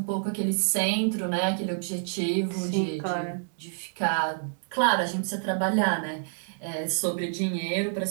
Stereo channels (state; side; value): silent; left; digital silence